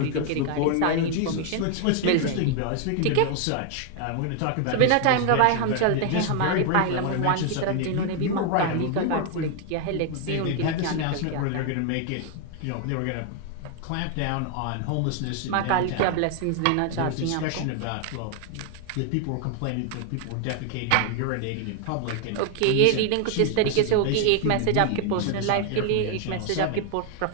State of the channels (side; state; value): both; different; correlation 0.00